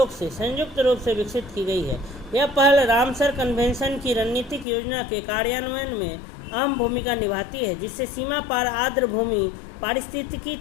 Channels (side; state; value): right; drops out; at 4.7 s